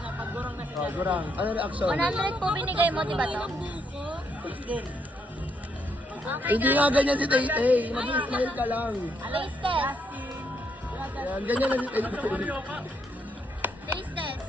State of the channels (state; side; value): normal; both; correlation 0.75